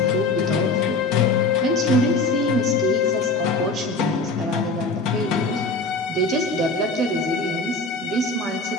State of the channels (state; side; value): quieter; right; 3.2 dB